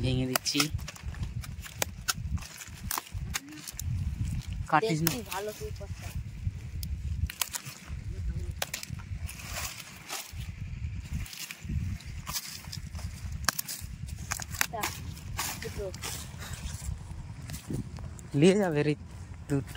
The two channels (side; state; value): both; identical; correlation 1.00